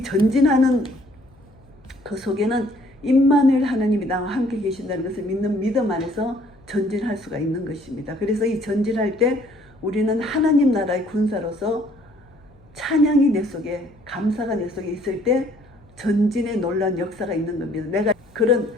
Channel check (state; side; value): noise; left; hum, 28 dB below the sound